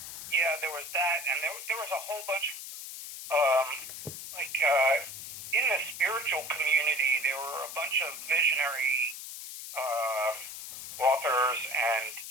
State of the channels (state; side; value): noise; left; hiss, 10 dB below the sound